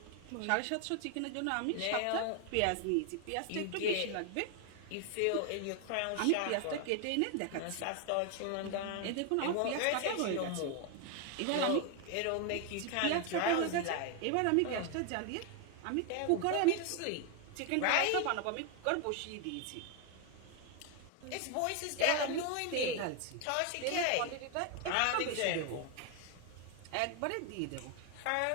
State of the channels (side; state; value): both; different; correlation 0.01